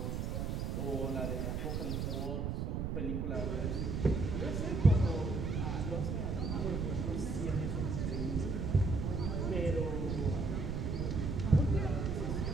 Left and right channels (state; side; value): noise; right; rumble, 1 dB below the sound